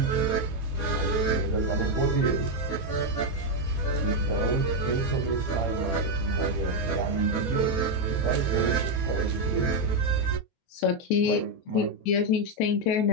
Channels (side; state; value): right; late; 23 ms